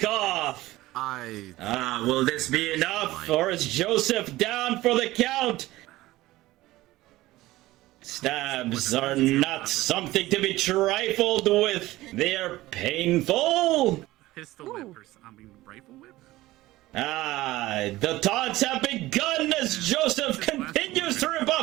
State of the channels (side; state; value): left; quieter; 17.4 dB